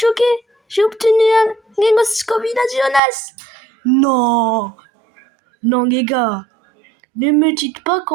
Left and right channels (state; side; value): drops out; left; at 3.0 s